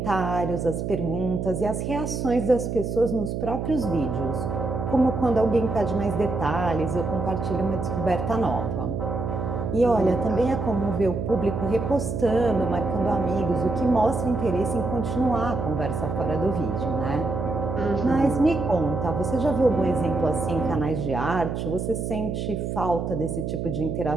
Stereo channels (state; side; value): noise; right; hum, 3 dB below the sound